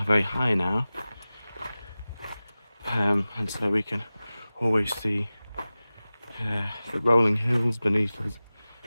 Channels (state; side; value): inverted; both; correlation -0.97